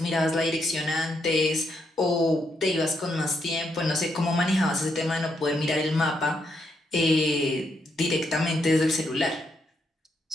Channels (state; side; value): normal; both; correlation 0.78